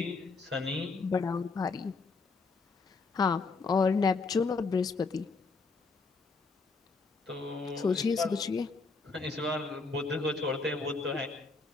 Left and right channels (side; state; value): right; quieter; 4.2 dB